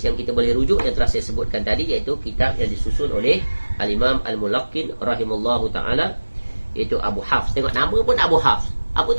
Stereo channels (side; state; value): both; inverted; correlation -1.00